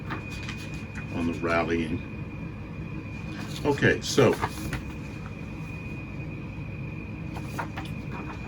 on the rallying. Okay, so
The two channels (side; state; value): both; identical; correlation 1.00